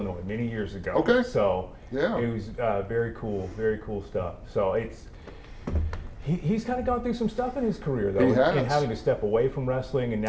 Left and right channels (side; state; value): both; identical; correlation 1.00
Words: many years ago. Okay. So yeah, it was very cool stuff. So he's kind of gone through some stuff in his career, though, in having to step away from wrestling and